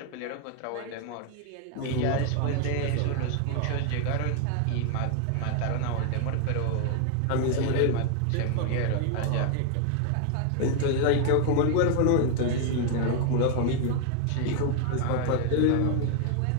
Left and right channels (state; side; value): different; both; correlation 0.00